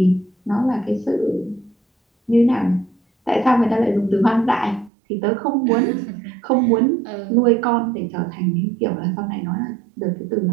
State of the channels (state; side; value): drops out; left; at 4.9 s